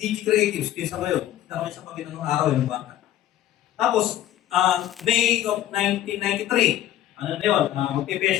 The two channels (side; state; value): right; quieter; 12.7 dB